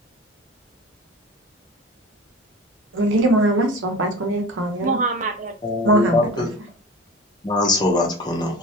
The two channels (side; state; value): both; normal; correlation 0.35